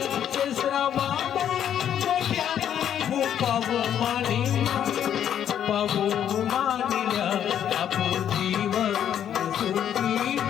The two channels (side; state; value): right; quieter; 9.7 dB